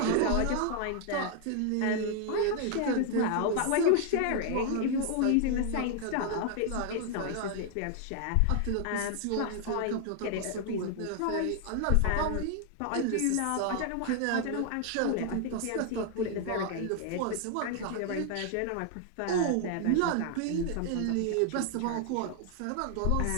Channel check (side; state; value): both; different; correlation 0.00